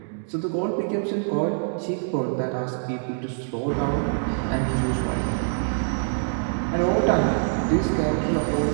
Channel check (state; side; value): silent; left; digital silence